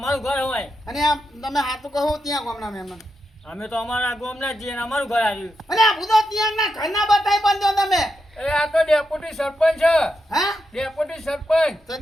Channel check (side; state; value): both; normal; correlation 0.85